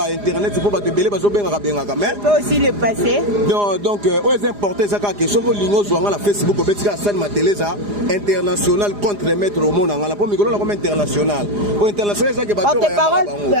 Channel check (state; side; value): late; left; 4.9 ms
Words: internet pour ba te belé bazo benga benga quand même tu peux aussi le passer donc aux importés ça ka question ko lingo zo ngala Facebook ko betika san mateleza international contre maître au monde ngala po mikolo comme international au international ça que ba porte-parole